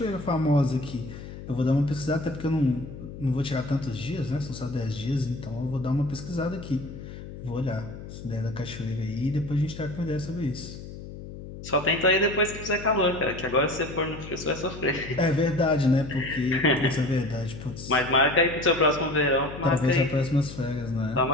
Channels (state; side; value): noise; left; hum, 12 dB below the sound